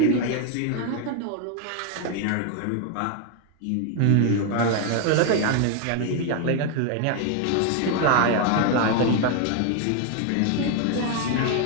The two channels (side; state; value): both; different; correlation 0.01